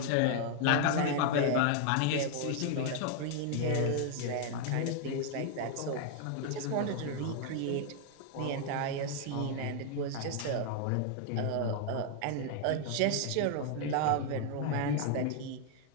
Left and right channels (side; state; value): both; different; correlation 0.00